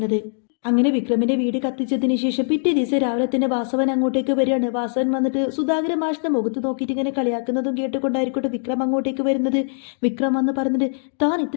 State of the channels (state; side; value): silent; right; digital silence